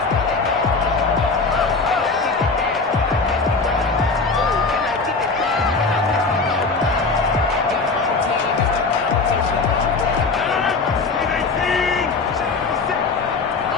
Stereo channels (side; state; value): right; quieter; 4.1 dB